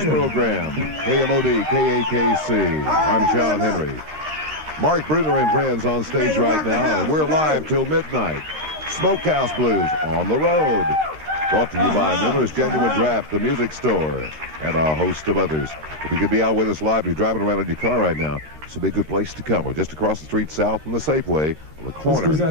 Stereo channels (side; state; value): left; late; 13 ms